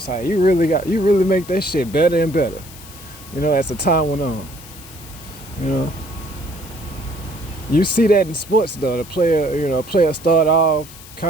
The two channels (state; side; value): noise; left; hiss, 18 dB below the sound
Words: You really make that shit better and better. You know, as the time went on. You know, you see that in sports though. The player start off